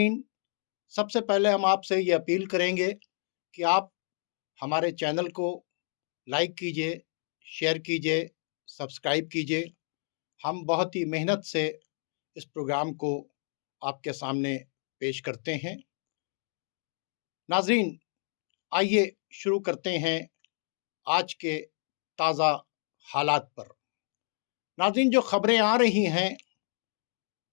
सबसे पहले हम आपसे ये अपील करेंगे कि आप हमारे चैनल को लाइक कीजिए, शेयर कीजिए, सब्सक्राइब कीजिए। हम बहुत ही मेहनत से इस प्रोग्राम को आपके सामने पेश करते हैं। नाज़रीन, आइए शुरू करते हैं आज के ताज़ा हालात पर। नाज़रीन, जो खबरें आ रही हैं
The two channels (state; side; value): silent; right; 58 dB below the other